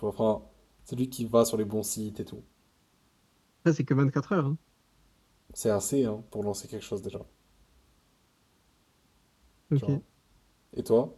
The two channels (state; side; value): identical; both; correlation 1.00